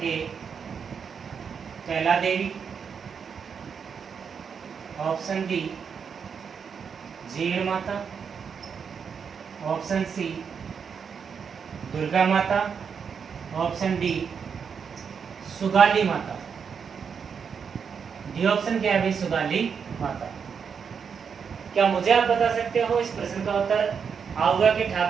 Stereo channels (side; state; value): left; quieter; 6.5 dB